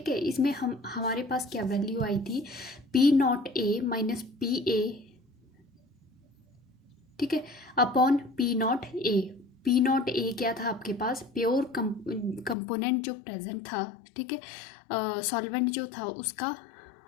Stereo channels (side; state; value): right; drops out; at 12.6 s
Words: है, इसमें हमारे पास क्या वैल्यू आई थी, P not a minus P A, ठीक है, upon P not a. P not a क्या था आपके पास, प्योर कंपोनेंट जो प्रेजेंट था. ठीक है, सॉल्वेंट जो था उसका